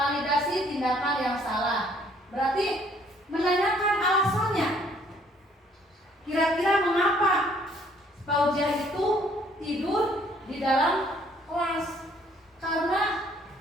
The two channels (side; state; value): both; normal; correlation 0.62